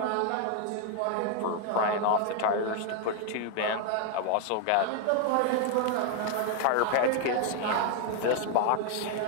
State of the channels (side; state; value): both; different; correlation 0.01